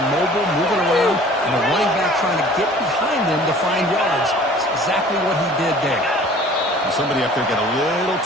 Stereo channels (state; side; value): normal; both; correlation 0.49